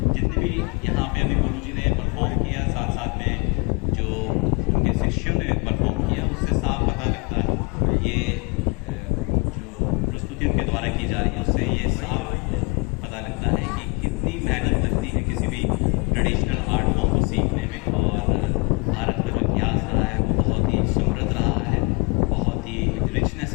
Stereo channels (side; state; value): right; quieter; 29.7 dB